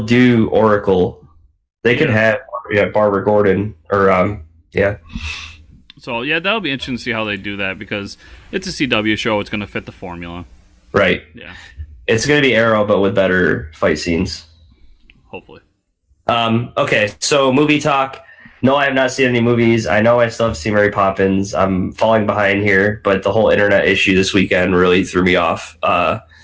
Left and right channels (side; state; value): both; identical; correlation 1.00